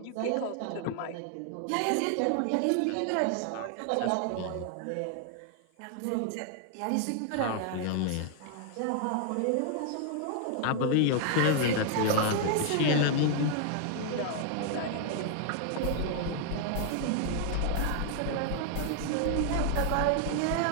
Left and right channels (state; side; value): different; both; correlation 0.00